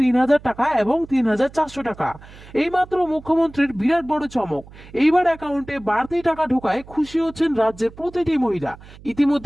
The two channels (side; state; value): right; noise; hum, 20 dB below the sound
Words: টাকা এবং 3400 টাকা। এইমাত্র মুখ্যমন্ত্রীর বিরাট বড় চমক। এইবার অ্যাকাউন্টে বাড়তি টাকা ঢোকায় খুশি হচ্ছেন রাজ্যের প্রতিটি মহিলা।